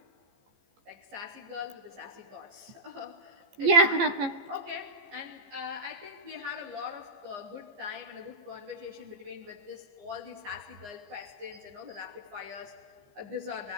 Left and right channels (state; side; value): late; left; 15 ms